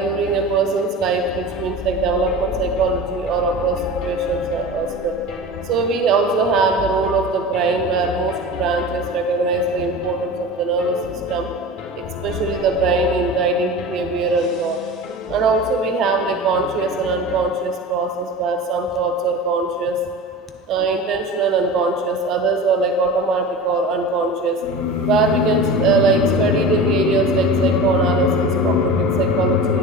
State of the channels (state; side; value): normal; both; correlation 0.33